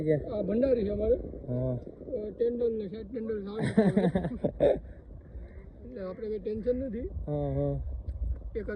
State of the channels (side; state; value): both; identical; correlation 1.00